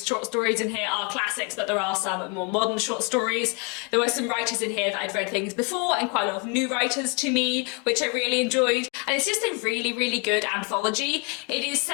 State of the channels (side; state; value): right; quieter; 34.3 dB